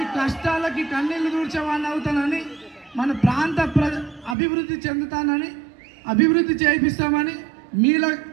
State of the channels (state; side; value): drops out; left; at 4.4 s